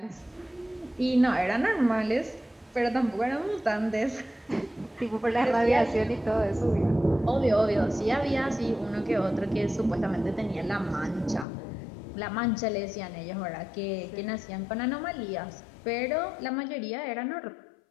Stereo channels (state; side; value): drops out; right; at 11.5 s